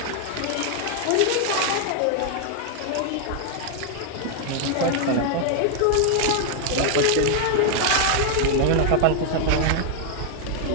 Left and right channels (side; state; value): both; different; correlation 0.00